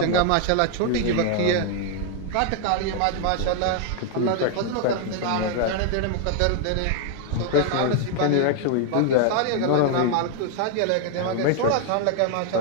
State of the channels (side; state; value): both; different; correlation 0.00